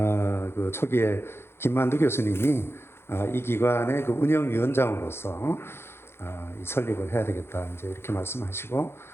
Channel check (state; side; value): late; right; 0.12 ms